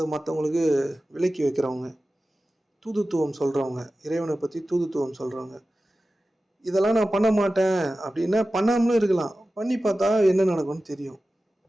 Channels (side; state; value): both; normal; correlation 0.95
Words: மற்றவங்களுக்கு விலக்கி வைக்கிறவங்க, தூதுத்துவம் சொல்கிறவங்க, இறைவனை பற்றி தூதுத்துவம் சொல்கிறவங்க. இதெல்லாம் நான் பண்ண மாட்டேன் அப்படின்னா பண்ணாமலும் இருக்கலாம். பண்ணி பார்த்தா என்ன நடக்கும்னு தெரியும்.